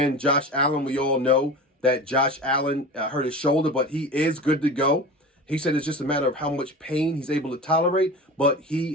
Josh Allen, we all know that Josh Allen hurt his shoulder, but he is good to go. He said it's just a matter of how much pain he's able to tolerate, but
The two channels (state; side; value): normal; both; correlation 0.32